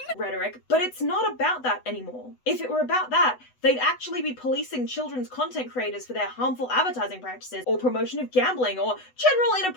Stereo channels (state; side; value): late; right; 8.0 ms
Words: rhetoric, but it's not about that anymore. If it were about that, they'd actually be policing children's content creators for their harmful advertising practices or promotion of gambling or general